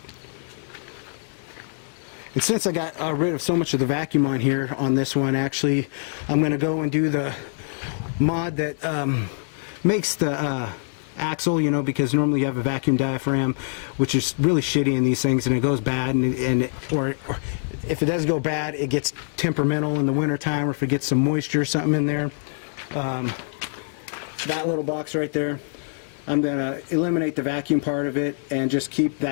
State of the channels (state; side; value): silent; right; digital silence